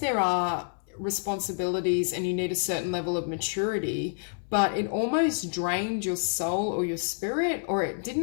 are responsibilities and you need a certain level of maturity, but it almost drained your soul or your spirit, or it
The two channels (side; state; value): right; silent; 59 dB below the other